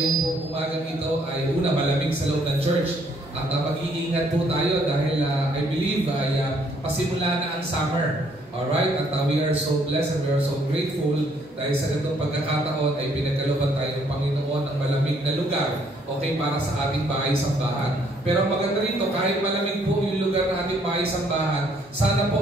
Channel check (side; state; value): both; normal; correlation 0.66